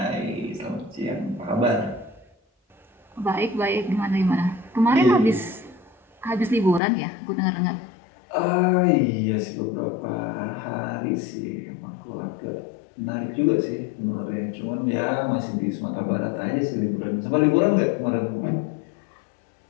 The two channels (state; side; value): drops out; right; at 6.8 s